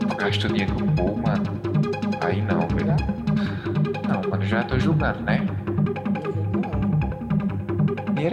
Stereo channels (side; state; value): both; identical; correlation 1.00